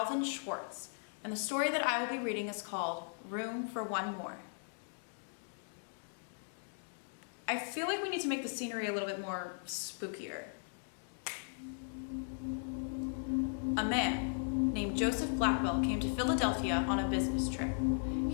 Schwartz, and the story that I will be reading is called Room for One More. I feel like we need to make the scenery a little bit more spookier. A man named Joseph Blackwell came to Philadelphia on a business trip.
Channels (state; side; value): silent; right; digital silence